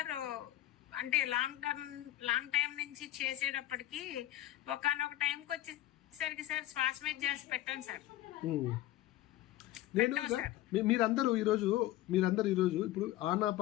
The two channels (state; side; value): quieter; right; 14.8 dB